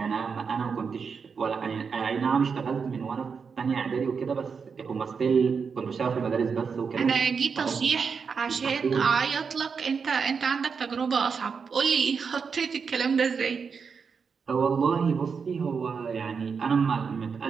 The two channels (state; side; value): quieter; left; 5.8 dB